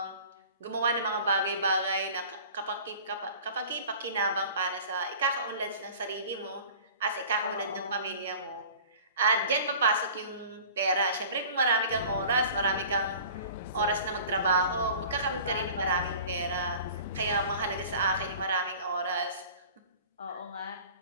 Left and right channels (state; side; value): inverted; both; correlation -0.44